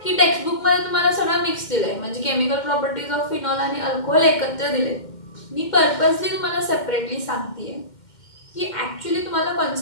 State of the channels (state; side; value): late; right; 2.1 ms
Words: की टेक्स्टबुकमध्ये तुम्हाला सगळं मिक्स दिलंय, म्हणजे केमिकल प्रॉपर्टीज ऑफ फिनॉल आणि अल्कोहोल एकत्र दिले. मी पर्पजली तुम्हाला सेपरेटली सांगतेय की ॲक्च्युली तुम्हाला